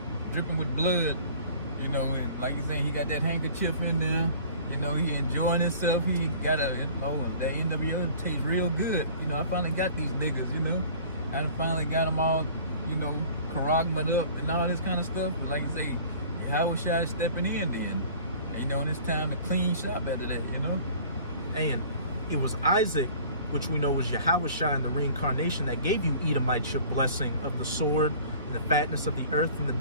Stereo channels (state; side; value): inverted; both; correlation -0.47